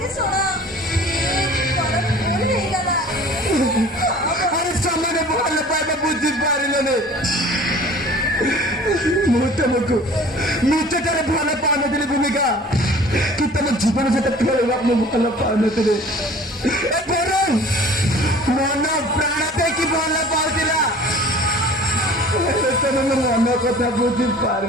अरे समय भल पाए बुझी पारे ମୁଁ ତୁମକୁ ନିଶ୍ଚୟ ଭଲ ପାଉନଥିଲି ଭୂମିକା କି ତମ ଜୀବନ ସହିତ ଖେଳିବା ମୁଁ ଭଲ ପାଉନଥିଲି ବରଂ ମନ ପ୍ରାଣ ଦେଇକି ଭଲ ପାଉଥିଲା ତମେ ମୋ ମନ କଥା ବୁଝି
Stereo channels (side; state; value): both; normal; correlation 0.47